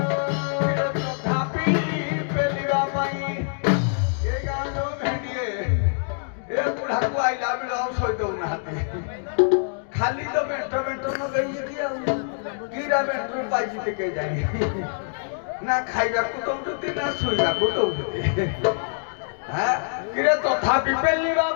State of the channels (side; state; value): right; silent; digital silence